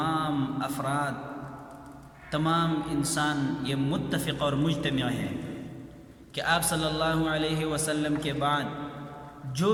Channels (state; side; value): identical; both; correlation 1.00